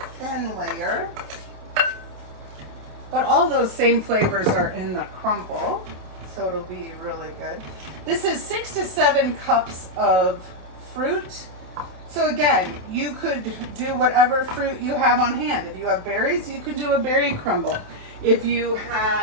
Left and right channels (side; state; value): left; late; 27 ms